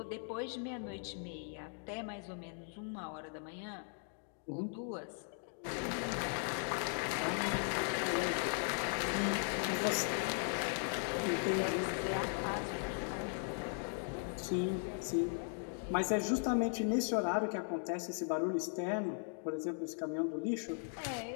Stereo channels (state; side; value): silent; right; 52 dB below the other